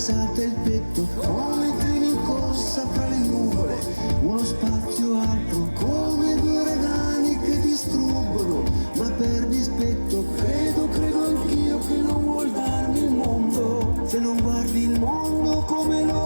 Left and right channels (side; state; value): both; inverted; correlation -1.00